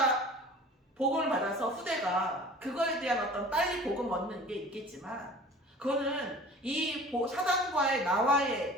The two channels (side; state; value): both; normal; correlation 0.44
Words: 복음을 받아서 후대가 그거에 대한 어떤 빨리 복음 얻는 게 있겠지만 그거는 이 사단과의 나와의